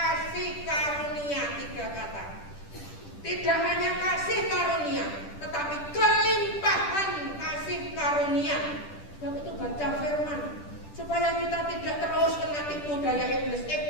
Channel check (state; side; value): late; right; 10 ms